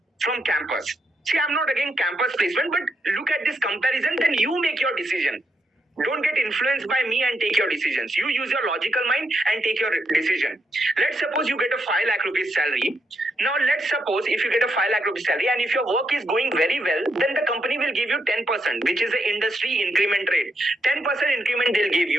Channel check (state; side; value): normal; both; correlation 0.81